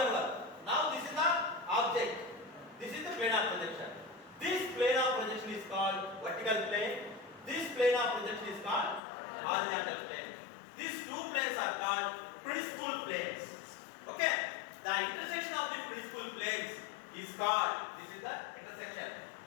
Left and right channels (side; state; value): right; drops out; at 9.0 s